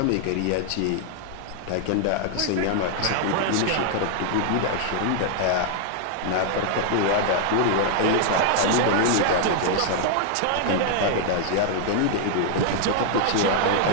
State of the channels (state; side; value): different; both; correlation 0.00